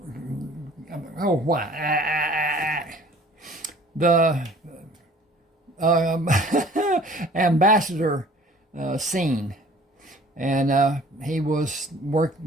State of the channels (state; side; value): normal; both; correlation 0.51